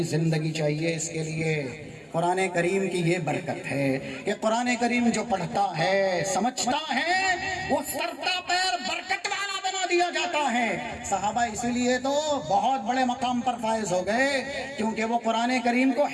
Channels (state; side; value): identical; both; correlation 1.00